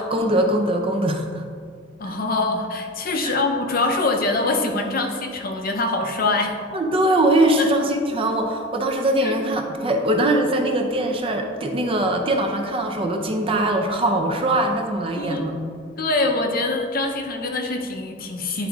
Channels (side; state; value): both; normal; correlation 0.25